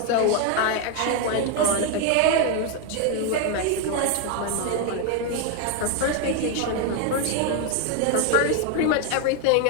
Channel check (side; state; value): both; different; correlation 0.01